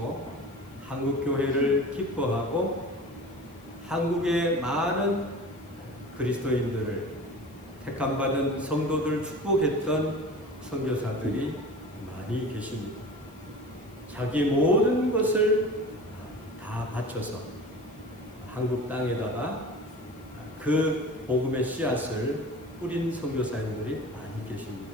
한국 교회를 기뻐하고 한국의 많은 그리스도인들을 택함받은 성도들 축복했던 선교사들이 많이 계십니다. 자기 모든 것을 다 바쳐서 한국 땅에다가 그 복음의 씨앗을 뿌린 선교사님들이 많이 계십니다.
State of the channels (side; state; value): left; noise; hiss, 28 dB below the sound